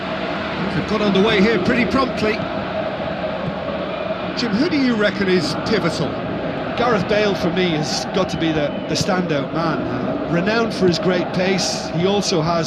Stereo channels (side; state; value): both; identical; correlation 1.00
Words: They've got underway here pretty promptly. Jim, who do you reckon is pivotal? Gareth Bale, for me, has got to be the standout man. Renowned for his great pace, he also